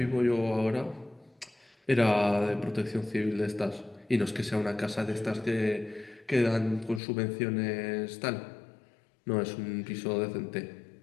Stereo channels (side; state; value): right; drops out; at 7.0 s